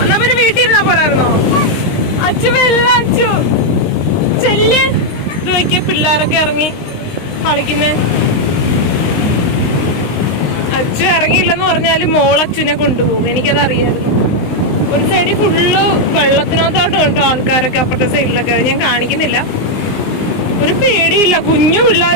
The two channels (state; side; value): late; right; 19 ms